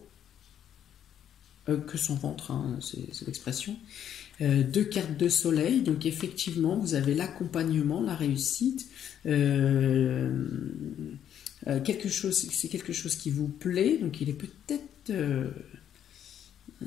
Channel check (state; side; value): quieter; right; 9.8 dB